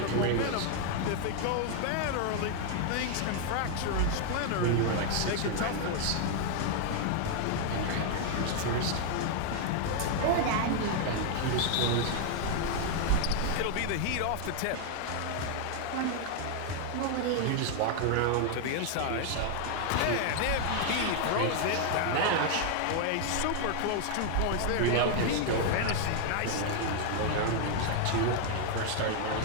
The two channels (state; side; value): different; both; correlation 0.00